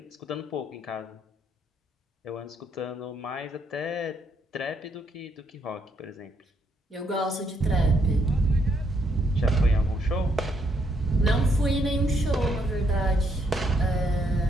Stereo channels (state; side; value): normal; both; correlation 0.74